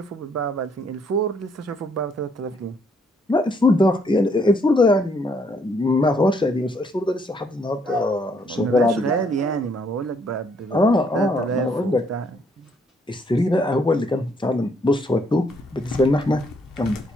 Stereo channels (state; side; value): normal; both; correlation 0.69